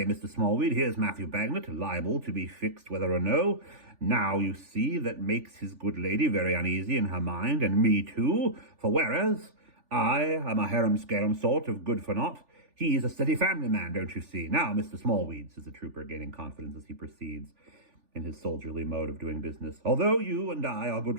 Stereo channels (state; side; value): late; left; 3.4 ms